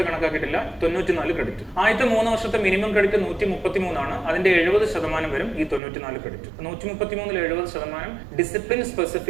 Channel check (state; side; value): drops out; left; at 5.8 s